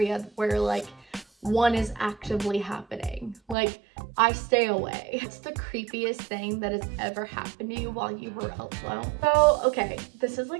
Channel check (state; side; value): drops out; left; at 3.6 s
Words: where like one is actively happening. Like, I stay away. It's the creepiest thing that has ever happened to you while you were alone. So, okay, this is